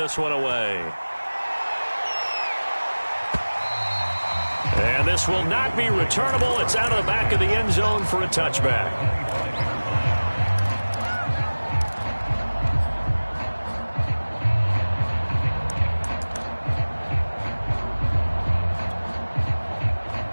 one away. And this will not be returnable. It's out of the back of the end zone for a touchback.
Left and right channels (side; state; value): both; inverted; correlation -1.00